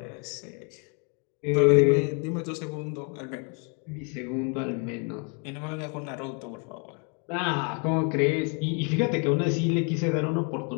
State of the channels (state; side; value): quieter; right; 37.1 dB